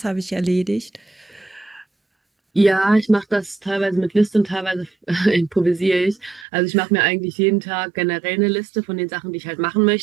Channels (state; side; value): drops out; left; at 6.5 s